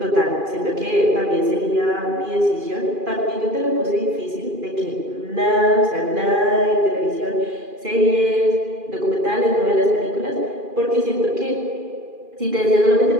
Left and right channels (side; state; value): left; late; 2.4 ms